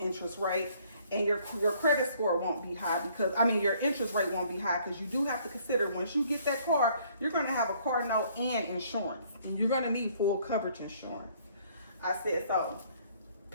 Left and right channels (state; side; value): inverted; both; correlation -0.62